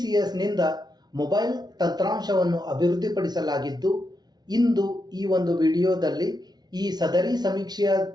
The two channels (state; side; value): late; left; 0.19 ms